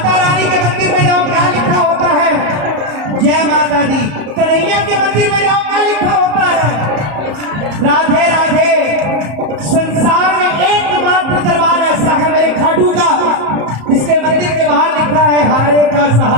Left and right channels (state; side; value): late; left; 34 ms